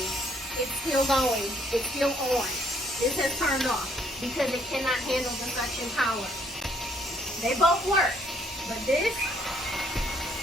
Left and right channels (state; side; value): normal; both; correlation 0.67